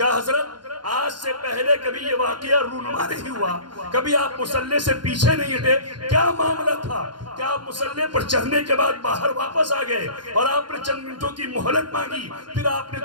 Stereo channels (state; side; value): late; left; 0.71 ms